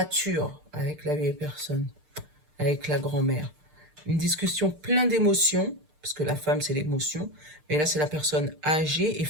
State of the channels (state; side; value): late; left; 6.6 ms